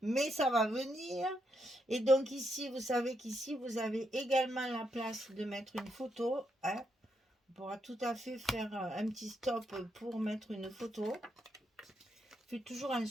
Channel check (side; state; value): both; normal; correlation 0.80